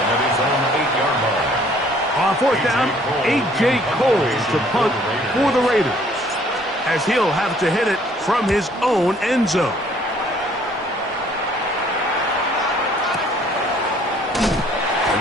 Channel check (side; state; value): both; normal; correlation 0.60